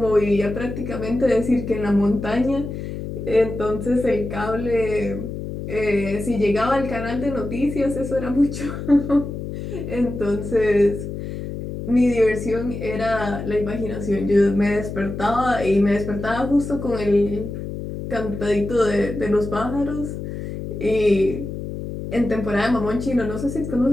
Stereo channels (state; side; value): noise; left; hum, 7 dB below the sound